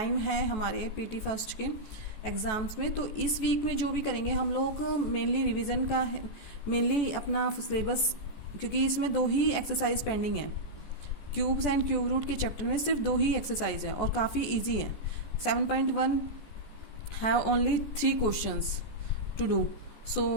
है हमारे पीटी फर्स्ट के एग्ज़ाम्स में, तो इस वीक में जो भी करेंगे हम लोग मेनली रिवीजन का मेनली अपना सिलेबस, क्योंकि इसमें दो ही एक्सरसाइज पेंडिंग है. क्यूब्स एंड क्यूब रूट के चैप्टर में सिर्फ दो ही एक्सरसाइज है और काफ़ी इजी है. 7.1 have only 3 questions to do.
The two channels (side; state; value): right; late; 14 ms